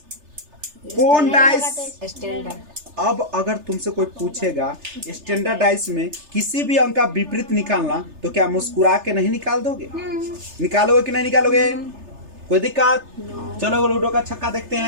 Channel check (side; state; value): left; late; 3.3 ms